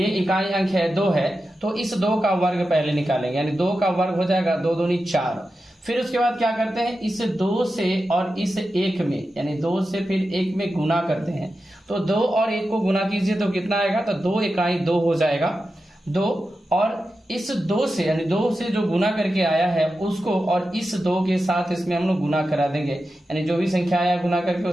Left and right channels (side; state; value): both; normal; correlation 0.91